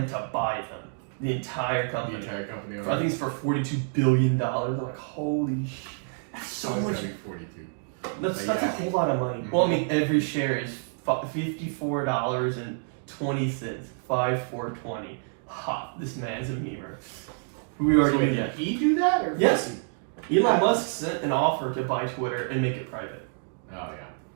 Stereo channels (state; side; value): silent; left; 59 dB below the other